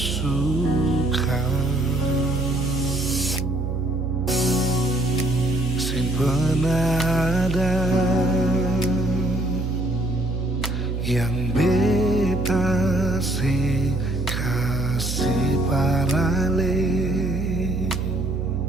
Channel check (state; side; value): noise; right; hum, 2 dB below the sound